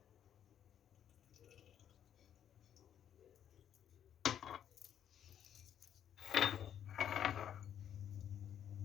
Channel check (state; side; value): quieter; right; 9.6 dB